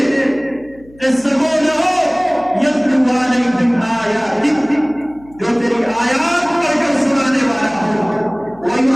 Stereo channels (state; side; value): noise; left; hum, 25 dB below the sound